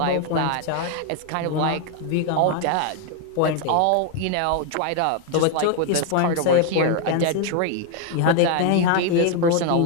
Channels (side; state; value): both; different; correlation 0.01